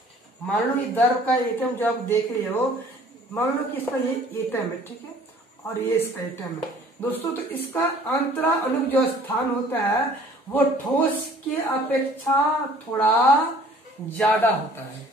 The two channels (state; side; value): normal; both; correlation 0.53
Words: मान लो ये द्रव का एटम जो आप देख रहे हो, मान लो कि इसका ये एटम है, ठीक है, और ये इसका एटम है दोस्तों। तो इसका अंतरा अणु जो स्थान होता है वो ठोस की अपेक्षा थोड़ा ज्यादा होता है।